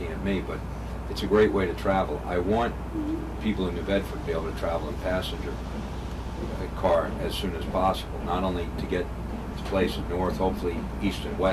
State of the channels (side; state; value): both; identical; correlation 1.00